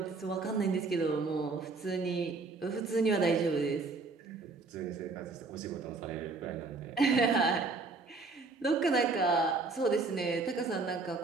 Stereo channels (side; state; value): left; quieter; 3.9 dB